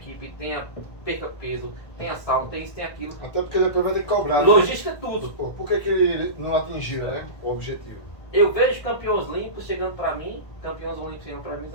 perca peso, tenha sauna, tenha isso, tenha aquilo. Até porque depois vai ter que cobrar. Né? Logística é tudo. Pô, por que ele não atingiu, né? O objetivo? Eu vejo campeões olímpicos chegando para mim, campeões olímpicos chegando para mim e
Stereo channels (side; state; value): right; late; 1.5 ms